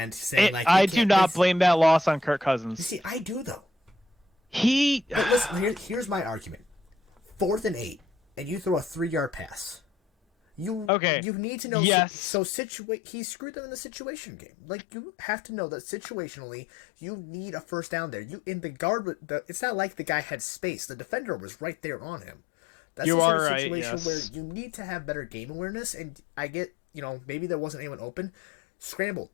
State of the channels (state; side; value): drops out; right; at 10.9 s